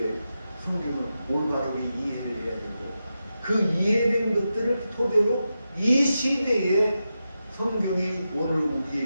성경을 올바르게 이해를 해야 되고 그 이해된 것들을 토대로 이 시대에 성경이 오늘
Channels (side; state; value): both; inverted; correlation -0.89